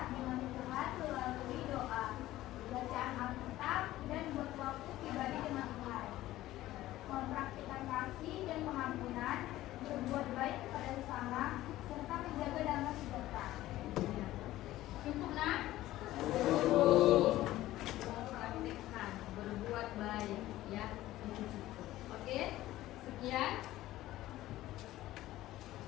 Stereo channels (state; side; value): quieter; right; 15.5 dB